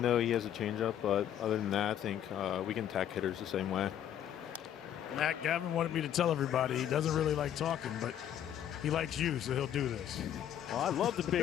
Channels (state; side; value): quieter; right; 10.4 dB